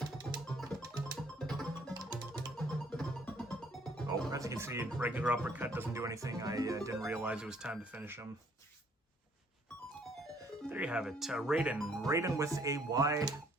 Oh, as you can see, regular uppercut doesn't do anything. I didn't realize it was time to finish him. There you have it. Raiden with a Y.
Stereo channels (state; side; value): normal; both; correlation 0.63